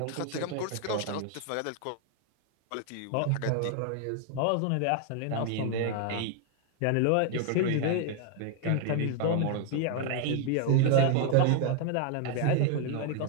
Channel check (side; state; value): both; different; correlation 0.00